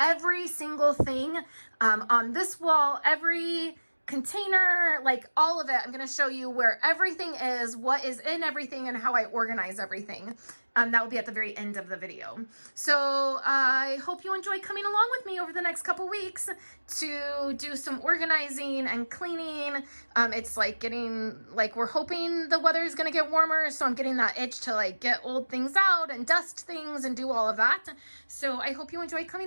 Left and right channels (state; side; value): inverted; both; correlation -1.00